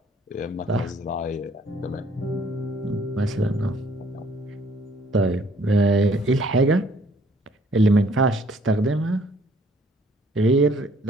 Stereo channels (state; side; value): normal; both; correlation 0.61